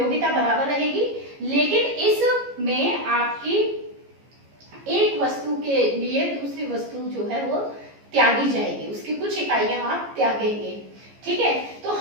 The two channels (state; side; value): late; left; 14 ms